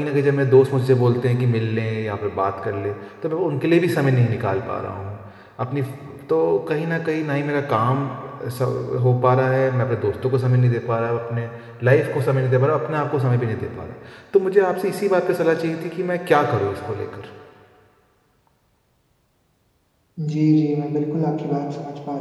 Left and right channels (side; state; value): both; identical; correlation 1.00